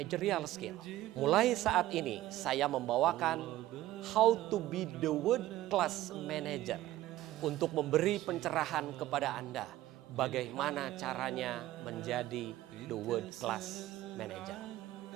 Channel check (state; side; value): quieter; left; 15.3 dB